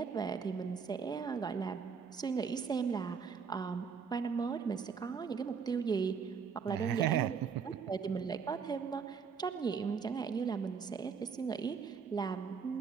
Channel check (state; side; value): quieter; left; 6.1 dB